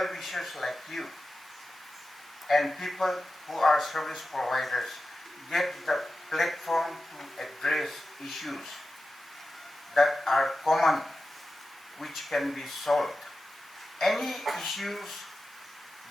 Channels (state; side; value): normal; both; correlation 0.93